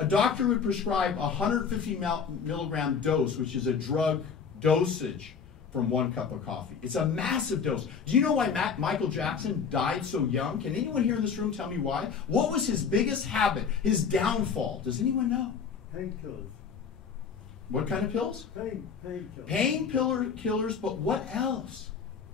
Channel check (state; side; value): quieter; right; 6.2 dB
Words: doctor would prescribe a 150 milligram dose, which is a drug dosage, from 1 cup of coffee. It's a massive dose. Do you know why Michael Jackson died so young? Can anyone here in this room tell me why? What was his biggest habit, his downfall? Does anyone know? Painkillers. What kind of pills? Painkillers. Painkillers, but what else?